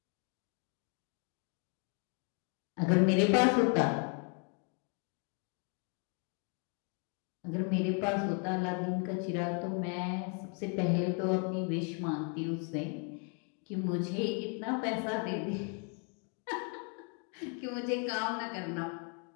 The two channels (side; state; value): right; quieter; 39.5 dB